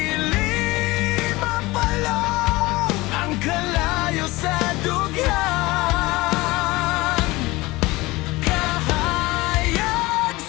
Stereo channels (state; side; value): quieter; right; 21.0 dB